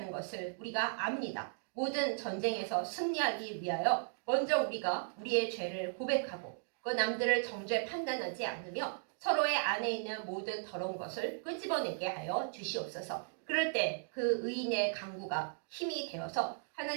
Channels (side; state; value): left; silent; digital silence